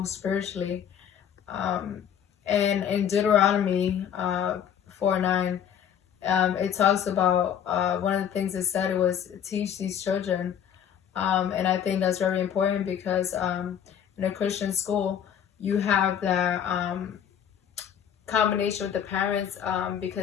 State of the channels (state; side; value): quieter; right; 8.9 dB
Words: spiritually. um, and in Deuteronomy 4:9, it talks about one of the things it said, it was teach these children. And I think that's very important because in a Christian school, you have that combination with the parents,